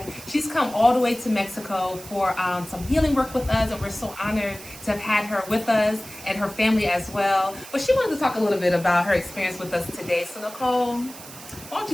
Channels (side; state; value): right; noise; hiss, 16 dB below the sound